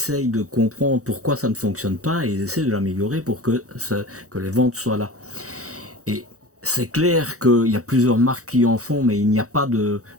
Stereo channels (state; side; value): late; left; 0.65 ms